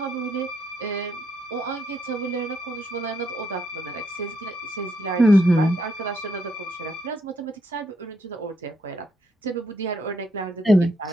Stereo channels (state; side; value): normal; both; correlation 0.75